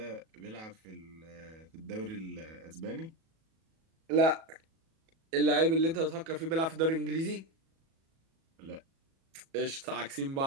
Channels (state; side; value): late; left; 37 ms